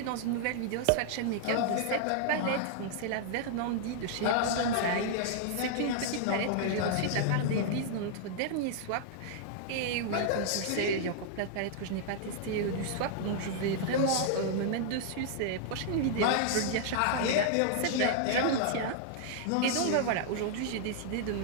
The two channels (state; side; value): different; both; correlation -0.01